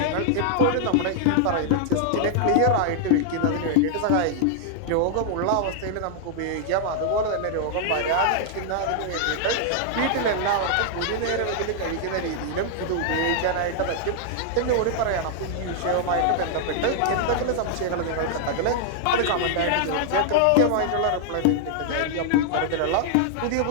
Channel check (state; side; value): different; both; correlation -0.01